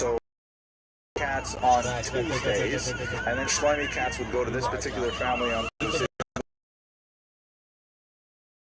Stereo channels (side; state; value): both; identical; correlation 1.00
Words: cats on Tuesdays, and then Shlomi cats would go to this particular family on Tuesdays.